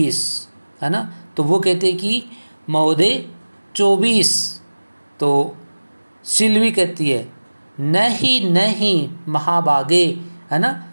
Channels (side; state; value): both; inverted; correlation -1.00